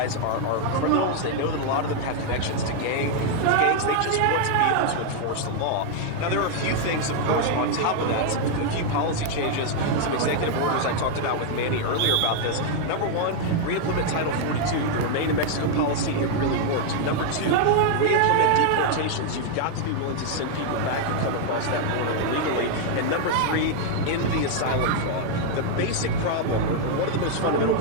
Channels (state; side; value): different; both; correlation 0.00